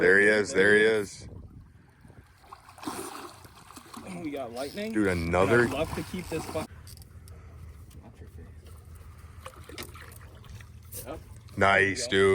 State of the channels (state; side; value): identical; both; correlation 1.00